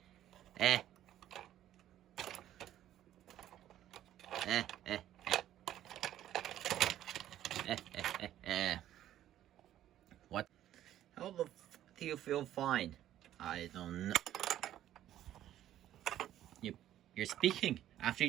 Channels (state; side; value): quieter; left; 12.3 dB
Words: What? How the f do you feel fine? I don't know. You're speaking after you